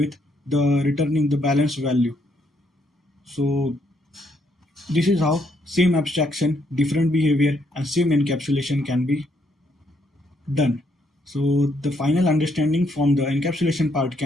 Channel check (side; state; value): both; normal; correlation 0.73